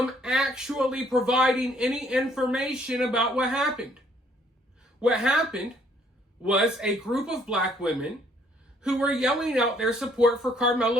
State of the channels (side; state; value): both; normal; correlation 0.64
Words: actually providing any information about what happened. What happened was a group of black women who were yelling out their support for